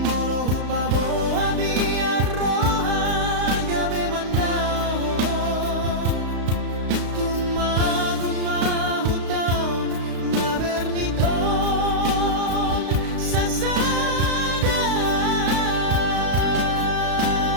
hupabo abia roha gabe mandao tumagon mahutaon na berniton sasada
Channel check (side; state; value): left; late; 35 ms